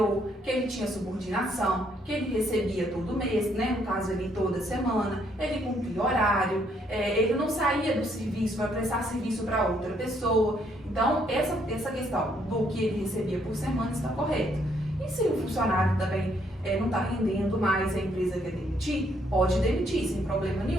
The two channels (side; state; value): both; normal; correlation 0.70